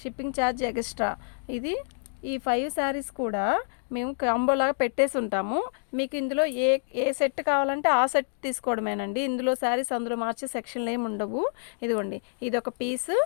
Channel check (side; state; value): right; silent; digital silence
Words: షిప్పింగ్ ఛార్జ్ ఎక్స్ట్రా. ఇది ఈ 5 శారీస్ కూడా మేము కాంబోలాగా పెట్టేసి ఉంటాము. మీకు ఇందులో ఏ సెట్ కావాలంటే ఆ సెట్ తీసుకోవడమేనండి. ఇందులో శారీస్ అందులో మార్చే సెక్షన్లు ఏమి ఉండవు. ఇదిగోండి, ఇది ఒక పీసు.